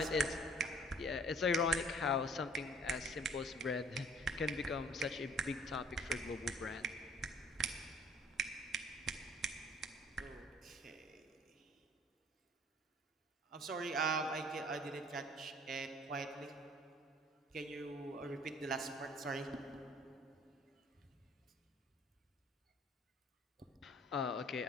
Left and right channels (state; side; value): normal; both; correlation 0.55